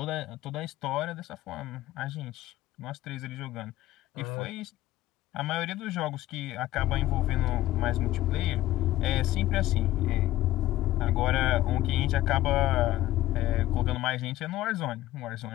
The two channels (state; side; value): quieter; right; 15.3 dB